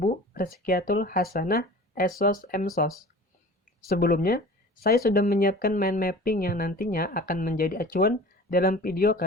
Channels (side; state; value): both; normal; correlation 0.41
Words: Rizkiatul Hasanah SOS MSOS. Sebelumnya, saya sudah menyiapkan mind mapping yang nantinya akan menjadi acuan dalam video